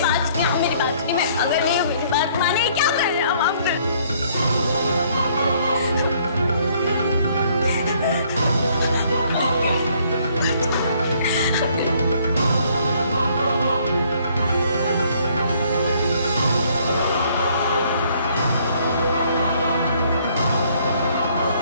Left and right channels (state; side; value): inverted; both; correlation -0.64